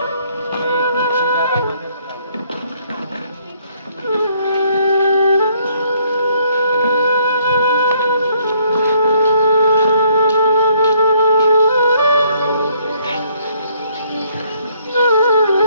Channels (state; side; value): inverted; both; correlation -0.66